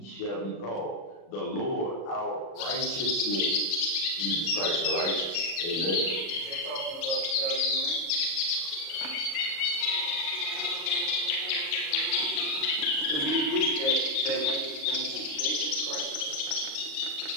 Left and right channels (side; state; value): right; late; 37 ms